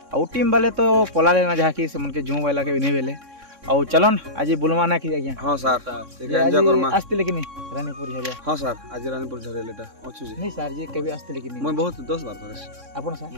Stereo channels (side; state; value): left; late; 3.6 ms